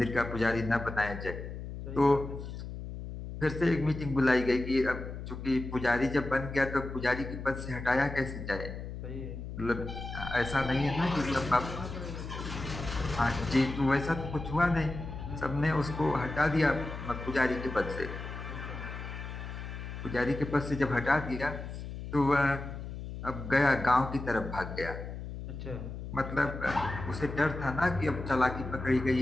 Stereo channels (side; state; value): left; noise; hum, 8 dB below the sound